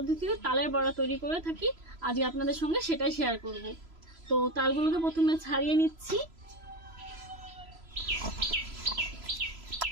তালের বড়া তৈরি করে থাকি, আজকে আপনাদের সঙ্গে সেটাই শেয়ার করব। তো তালগুলোকে প্রথমে ছাড়িয়ে নিচ্ছি।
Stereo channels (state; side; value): late; left; 3.0 ms